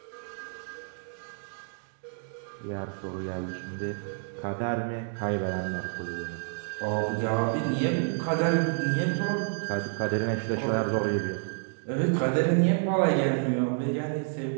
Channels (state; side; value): silent; left; 58 dB below the other